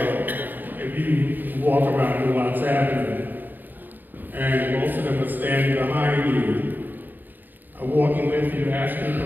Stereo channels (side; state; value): left; late; 0.090 ms